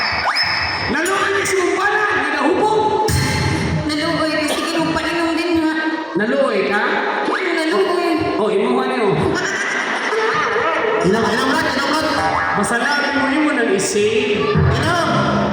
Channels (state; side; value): identical; both; correlation 1.00